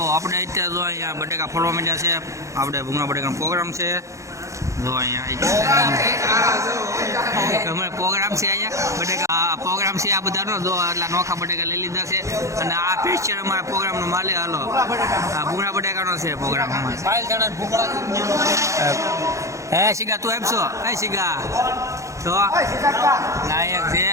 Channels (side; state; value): left; late; 0.15 ms